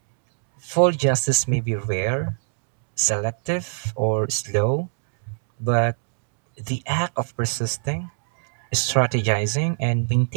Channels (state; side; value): silent; left; digital silence